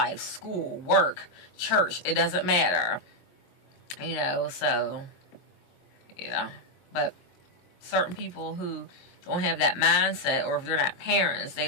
School, work, church. It doesn't matter. You know, so, yeah. But certain people who don't have that mindset, or if they're not parents,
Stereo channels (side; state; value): right; late; 22 ms